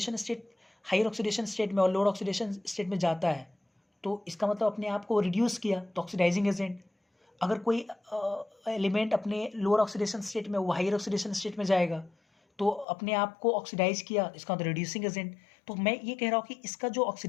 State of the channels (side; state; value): right; drops out; at 12.9 s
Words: state higher oxidation state में और लोअर ऑक्सीडेशन स्टेट में जाता है तो इसका मतलब अपने आप को रिड्यूस किया, तो ऑक्सीडाइजिंग एजेंट। अगर कोई एलिमेंट अपने लोअर ऑक्सीडेशन स्टेट में वो हायर ऑक्सीडेशन स्टेट में जाएगा तो अपने आप को ऑक्सीडाइज किया, इसका मतलब रिड्यूसिंग एजेंट। तो मैं ये कह रहा हूँ कि इसका जो